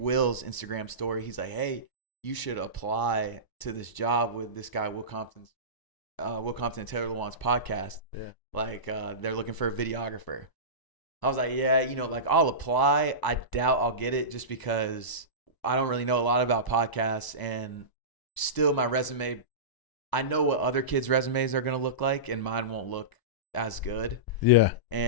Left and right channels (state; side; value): late; right; 1.0 ms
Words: Instagram story. He's like, hey, you should apply to this job with this guy, Will Compton and Taylor Lewan's podcast. Yeah. Like, they're looking for a videographer. I was like, yeah, like I'll apply. I doubt I'll get it, just because I don't really know a lot about podcasts, and still my resume, I know what other kids' resumes are going to look like, and mine won't look as good. Yeah.